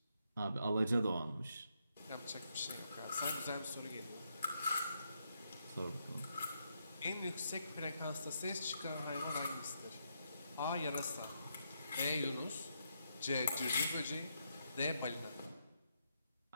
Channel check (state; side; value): inverted; both; correlation -0.79